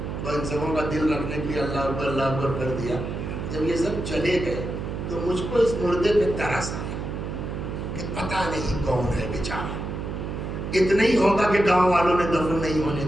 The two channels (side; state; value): right; noise; hum, 5 dB below the sound